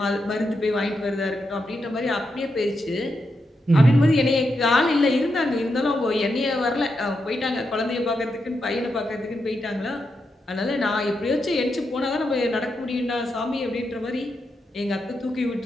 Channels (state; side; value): normal; both; correlation 0.85